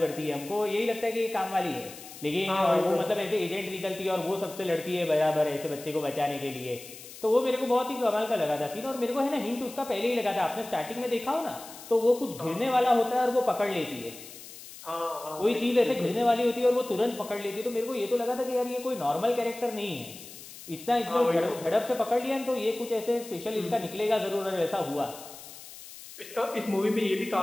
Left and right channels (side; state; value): left; noise; hiss, 16 dB below the sound